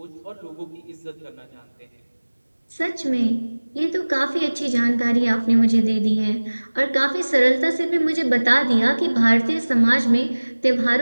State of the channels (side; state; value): both; inverted; correlation -1.00